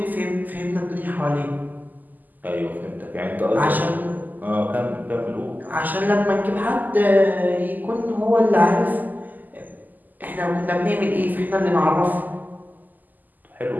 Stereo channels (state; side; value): late; left; 0.084 ms